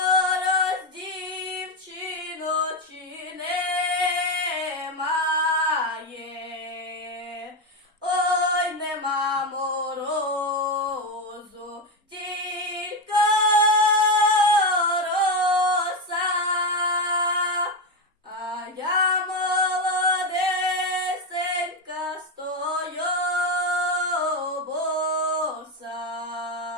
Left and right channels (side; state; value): both; normal; correlation 0.11